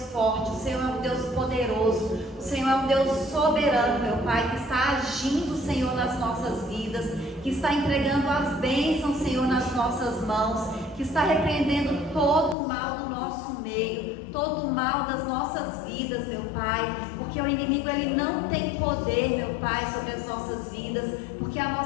forte, o Senhor é um Deus poderoso, o Senhor é um Deus soberano, meu Pai, que está agindo, Senhor, nas nossas vidas, que está entregando as bênçãos, Senhor, nas nossas mãos, que está repreendendo todo o mal do nosso meio, todo o mal das nossas vidas, meu Pai, porque o inimigo, ele não tem poder, meu Pai, sobre as nossas vidas, porque a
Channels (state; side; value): drops out; right; at 12.6 s